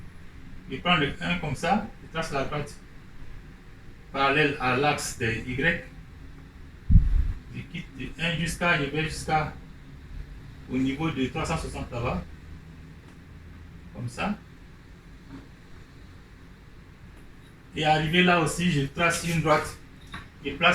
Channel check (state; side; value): identical; both; correlation 1.00